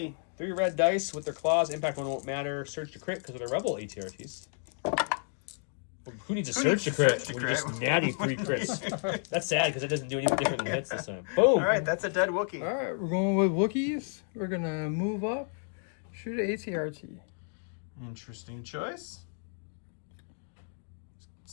3 red dice with their claws. Impact one won't matter. Surge to crit because of the Rebel ATRTs. Who needs a surge to crit? surge to We're just crit? natty 3 crits. That's sad because it doesn't do anything different than hits this time. Boom! All right, that's a dead Wookiee. All right, we're going with Wookiees. We're going to move up. Shoot at ATRT. Interesting choice.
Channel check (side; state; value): right; silent; 57 dB below the other